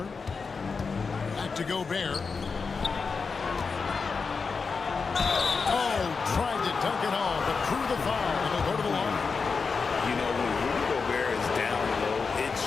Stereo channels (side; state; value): right; quieter; 4.9 dB